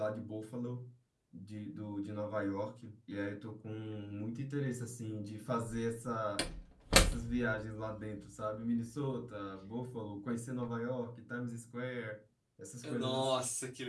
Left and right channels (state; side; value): identical; both; correlation 1.00